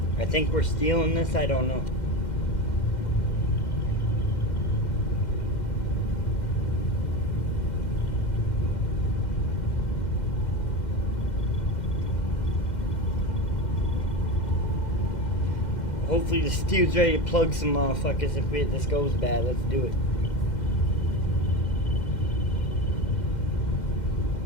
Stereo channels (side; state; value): right; late; 2.1 ms